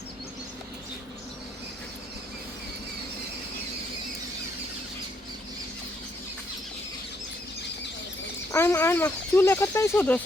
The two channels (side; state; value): both; normal; correlation 0.73